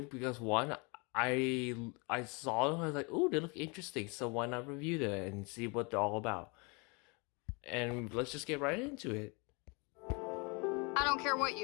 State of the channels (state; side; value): quieter; right; 30.8 dB